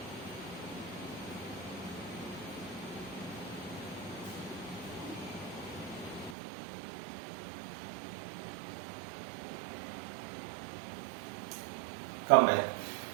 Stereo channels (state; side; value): drops out; left; at 6.4 s